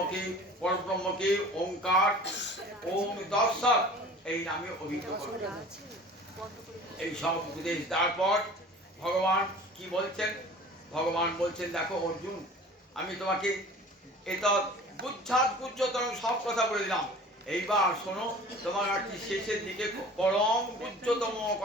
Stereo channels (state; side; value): normal; both; correlation 0.44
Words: পরব্রহ্মকে ওঙ্কার ওম তৎসৎ এই নামে অভিহিত করবে। এই সব উপদেশ তারপর ভগবান কি বলছেন? ভগবান বলছেন, দেখো অর্জুন, আমি তোমাকে এটা গুচ্ছাত গুচ্ছতম সব কথা বলে দিলাম। এইবার শোনো, তোমার একটি শেষের দিকে পরম গুচ্ছতম